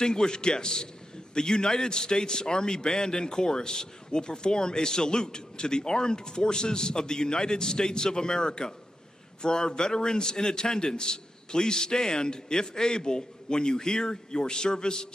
guests, the United States Army Band and Chorus will perform a salute to the Armed Forces of the United States of America. For our veterans in attendance, please stand, if able, when you hear your service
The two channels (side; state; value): both; normal; correlation 0.88